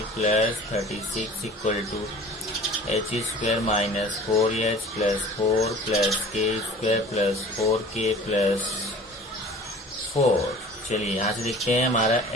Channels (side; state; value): both; normal; correlation 0.44